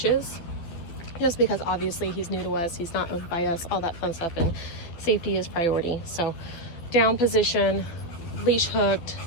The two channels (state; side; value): late; right; 12 ms